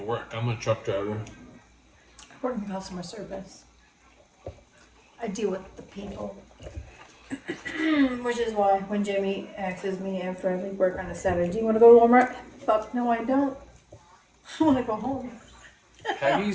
work? I'm a truck driver. I work in customer service. I deal with the people. Which is why when Jamie asks me after I leave work on a Saturday, do you want to go to Walmart? Fuck no, I don't. I want to go home.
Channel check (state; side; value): identical; both; correlation 1.00